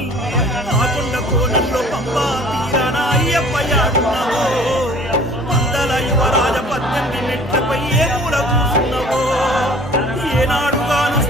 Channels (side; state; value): both; normal; correlation 0.50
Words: ఆకొండ కోనల్లో పంబా తీరాన అయ్యప్ప యాడున్నావో పందల యువరాజ 18 మెట్లపై ఏ మూల కూసున్నావో ఏనాడు